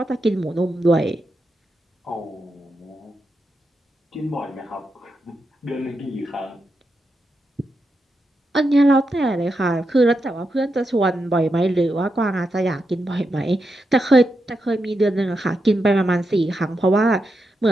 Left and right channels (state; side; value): normal; both; correlation 0.86